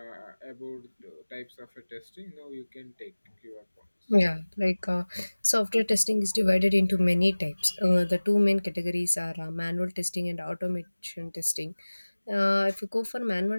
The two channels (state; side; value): inverted; both; correlation -1.00